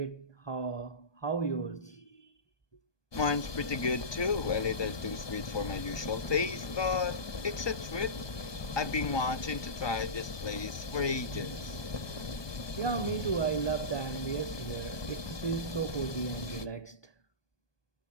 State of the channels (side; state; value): right; late; 1.2 ms